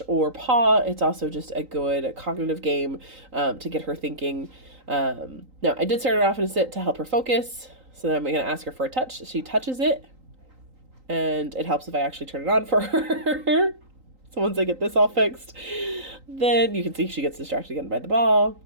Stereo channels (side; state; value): left; late; 3.9 ms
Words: or paw. It's also just a good cognitive game to get her thinking. Now, I did start her off in a sit to help her focus. So then I'm going to ask her for a touch. She touches it, and it helps if I actually turn it on for her. So once I get this all fixed, then you can see she gets distracted again by the ball.